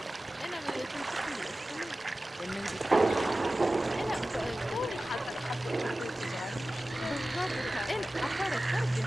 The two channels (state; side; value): normal; both; correlation 0.96